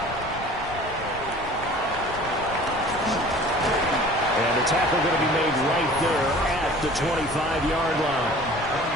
And the tackle going to be made right there at the 25-yard line.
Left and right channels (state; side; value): noise; left; rumble, 14 dB below the sound